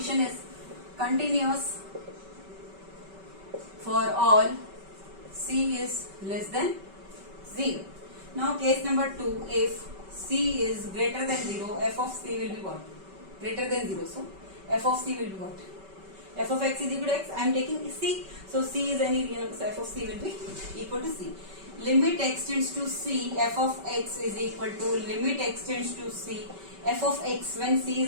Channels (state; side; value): late; left; 5.2 ms